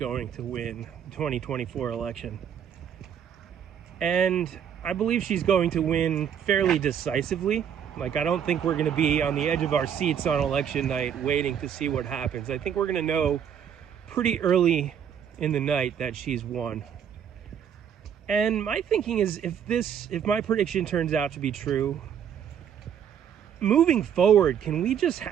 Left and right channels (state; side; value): quieter; left; 8.5 dB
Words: to win the 2024 election. And I believe she's going to win fairly decisively. Like, I don't think we're going to be on the edge of our seats on election night waiting to see what happens. I think we're going to know pretty early in the night that she's won. And my thinking is, if my prediction turns out to be true, moving forward, can we just